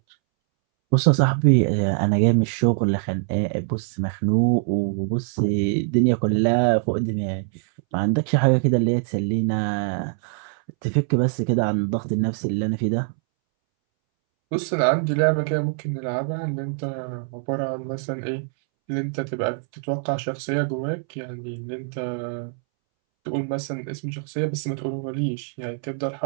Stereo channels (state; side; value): silent; left; 63 dB below the other